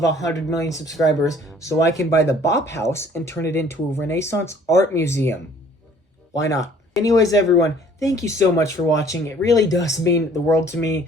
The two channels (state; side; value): normal; both; correlation 0.56